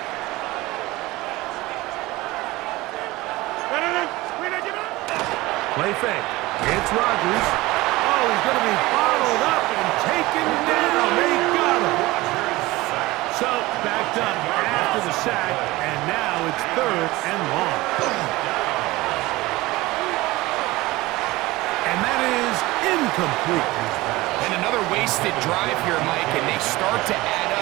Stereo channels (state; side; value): quieter; left; 19.8 dB